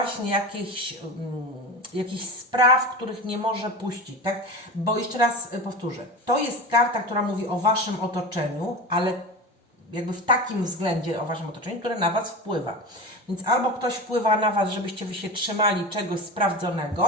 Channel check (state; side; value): normal; both; correlation 0.28